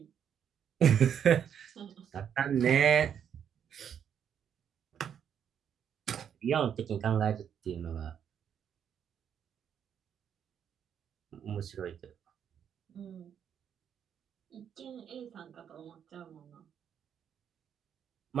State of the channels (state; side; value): quieter; left; 8.5 dB